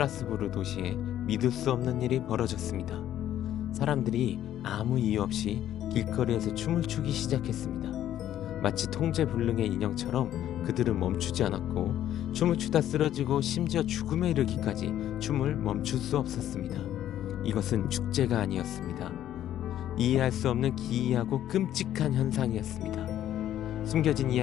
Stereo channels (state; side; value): quieter; right; 11.7 dB